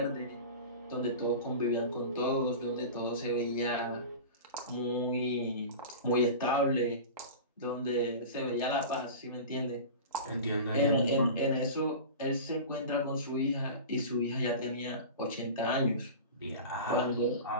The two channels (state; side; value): inverted; both; correlation -0.32